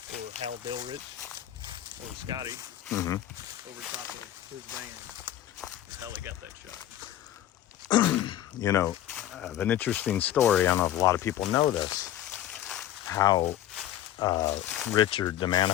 or Hal Delrich, or Scotty, over top of his van. That's how they got that shot. You know, an interesting story, I don't know if a lot of people know this, how Richard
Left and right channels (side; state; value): right; quieter; 12.2 dB